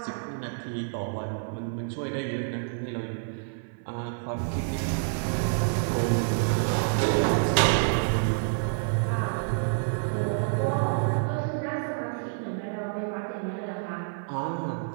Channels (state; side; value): silent; left; 59 dB below the other